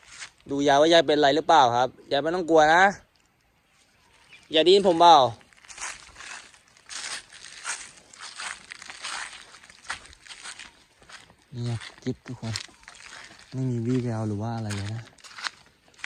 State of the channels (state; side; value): identical; both; correlation 1.00